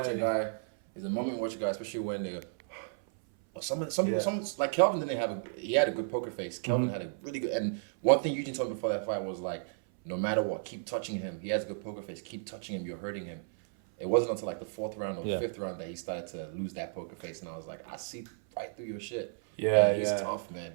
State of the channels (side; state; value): left; silent; 56 dB below the other